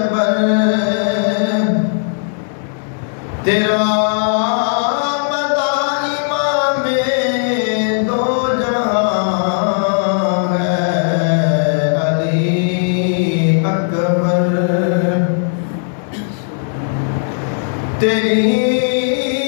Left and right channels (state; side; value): silent; right; 67 dB below the other